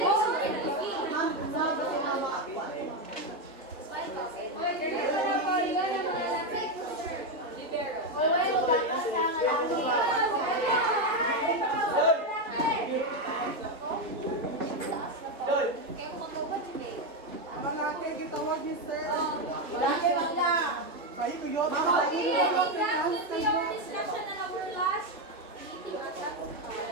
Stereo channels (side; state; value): both; normal; correlation 0.08